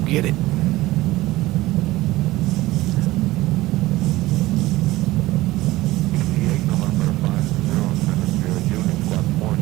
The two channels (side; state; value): left; quieter; 17.7 dB